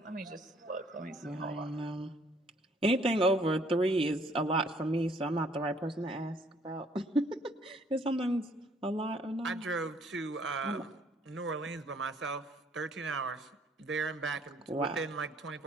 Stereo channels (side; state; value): both; normal; correlation 0.62